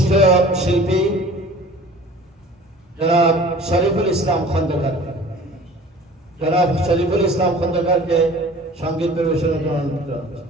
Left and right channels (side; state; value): both; normal; correlation 0.45